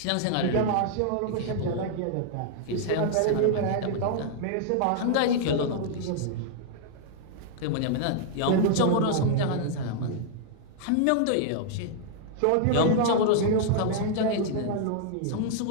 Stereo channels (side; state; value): both; different; correlation -0.01